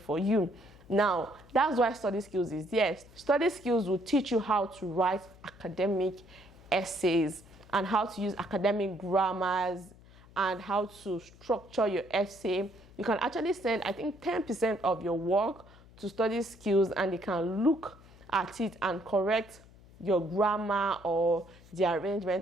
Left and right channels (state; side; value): noise; left; hum, 23 dB below the sound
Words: you. Now, that's why Study Skills is there. Study Skills will teach you how to write academic essays and how to use academic grammars and how to structure your essay. You can actually send, I think, 10% of your work to Study Skills, and they can look at it and correct your grammar or the